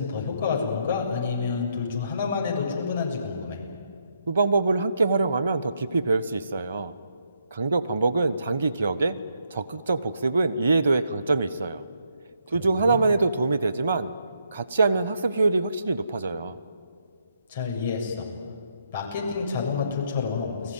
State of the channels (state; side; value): inverted; both; correlation -0.77